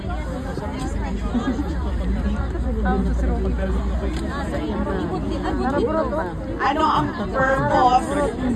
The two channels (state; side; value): identical; both; correlation 1.00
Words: Ano ang purpose?